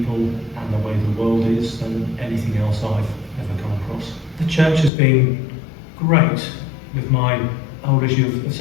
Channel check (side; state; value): right; drops out; at 4.9 s